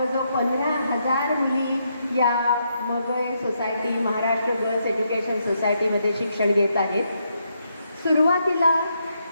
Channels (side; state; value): both; inverted; correlation -0.79